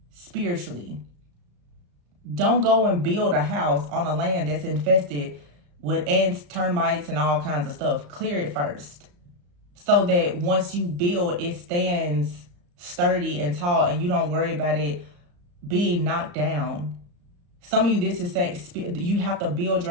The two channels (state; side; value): late; left; 34 ms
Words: spiritually. Don't go and build a house on a land that's infested with ants, termites, and all kinds of stuff. Clear it first, so that once you build, it stands sturdy and tall, and you don't worry about it being knocked down. Some of you, this is saying you have to build